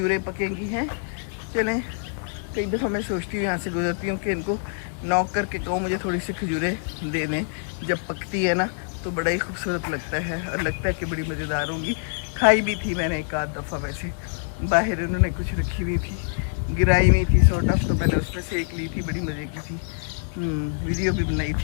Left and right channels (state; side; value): silent; right; 62 dB below the other